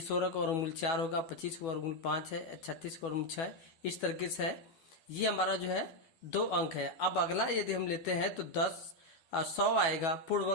का वर्गमूल 4 होगा, 25 का वर्गमूल 5 है, 36 का वर्गमूल 6। इस तरीके से है। ये हमारा जो है 2 अंक है। अब अगला यदि हम लेते हैं तो 100 आएगा, पूर्ण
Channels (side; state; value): right; late; 12 ms